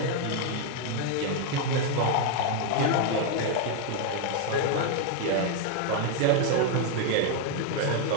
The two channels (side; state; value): both; different; correlation 0.01